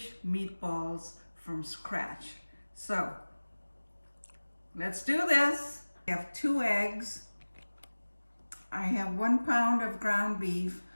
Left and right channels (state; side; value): inverted; both; correlation -1.00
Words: meatballs from scratch. So let's do this. I have 2 eggs. I have 1 pound of ground beef,